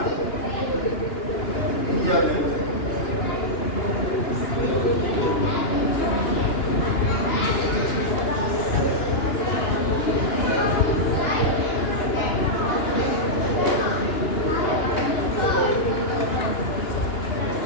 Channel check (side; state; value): right; late; 2.9 ms